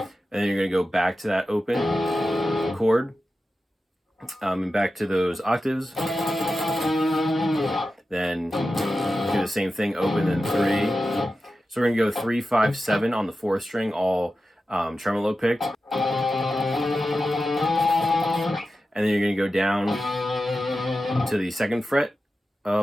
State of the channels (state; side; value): normal; both; correlation 0.92